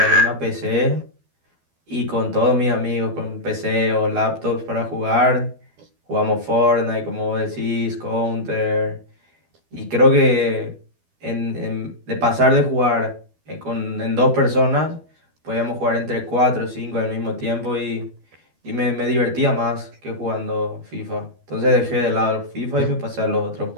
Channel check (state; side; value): late; left; 12 ms